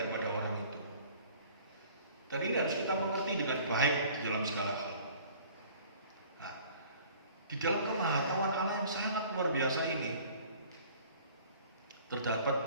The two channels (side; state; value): both; inverted; correlation -0.50